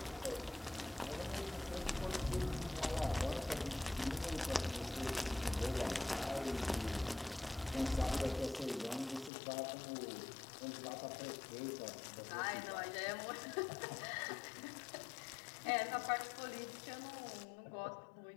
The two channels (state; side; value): drops out; right; at 9.3 s